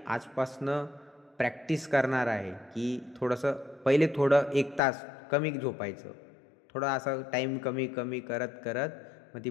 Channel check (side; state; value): right; drops out; at 4.8 s